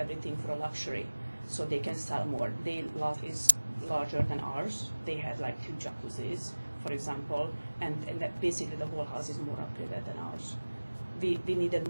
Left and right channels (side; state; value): both; inverted; correlation -1.00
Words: for luxury, so they can sell more. Their lot is larger than ours. They had like 2 jacuzzis, for example, and that basically the whole house is more upgraded than ours. We needed